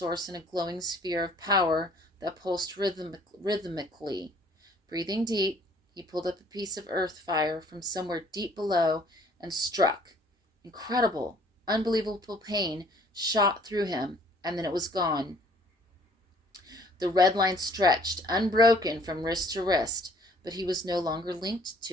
in a glowing sphere of power that pulsed rhythmically. Breathing deep, he pulled up a piece of earth fire from somewhere deep below and struck. Incredible, unbelievable pain shot through him, and then it was gone. The red line stretched, unbroken from wrist to wrist, but he was no longer linked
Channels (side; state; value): both; normal; correlation 0.57